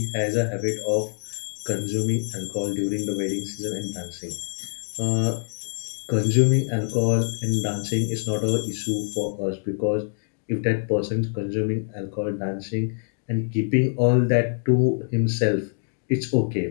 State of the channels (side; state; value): right; silent; digital silence